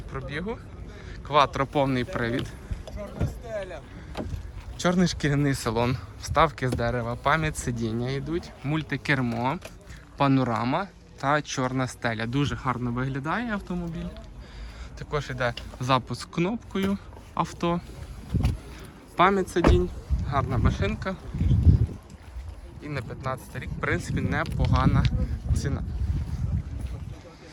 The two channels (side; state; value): both; identical; correlation 1.00